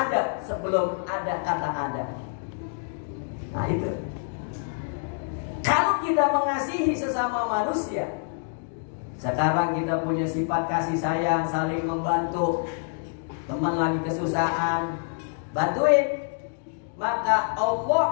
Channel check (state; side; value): silent; right; digital silence